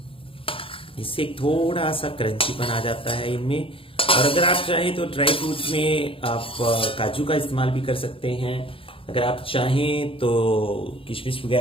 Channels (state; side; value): late; right; 0.26 ms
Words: इससे थोड़ा सा क्रंचीपन आ जाता है इनमें। और अगर आप चाहें तो ड्राई फ्रूट में आप काजू का इस्तेमाल भी कर सकते हैं। अगर आप चाहें तो किशमिश